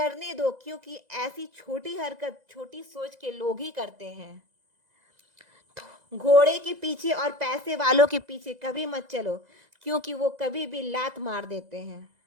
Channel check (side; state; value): left; late; 2.0 ms